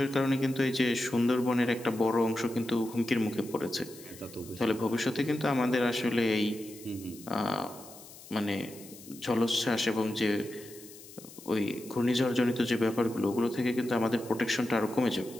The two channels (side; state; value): left; noise; hiss, 18 dB below the sound